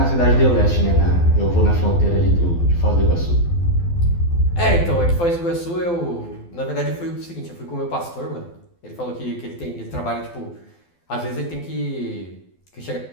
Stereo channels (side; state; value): right; late; 12 ms